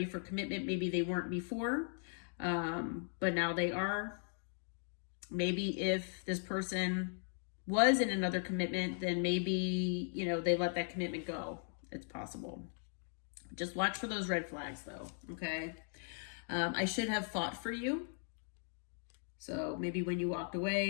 for commitment. Maybe they weren't before, but now they are. Maybe if this person was in another commitment, then maybe, they let that commitment go. It's possible. Just watch for those red flags though. Okay. I should have fought for you. So maybe when you walked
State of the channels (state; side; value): silent; right; 52 dB below the other